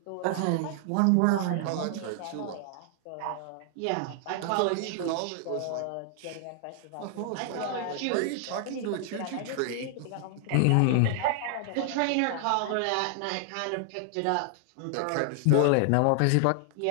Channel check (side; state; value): both; different; correlation 0.00